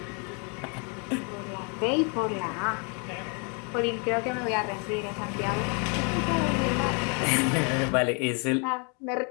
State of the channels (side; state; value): right; quieter; 36.0 dB